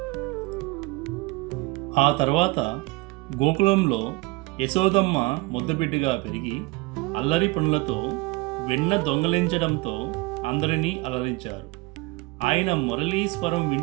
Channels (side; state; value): left; quieter; 23.4 dB